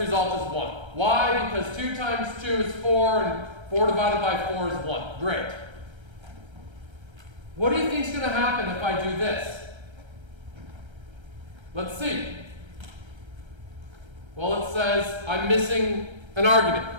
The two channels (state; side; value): late; left; 1.3 ms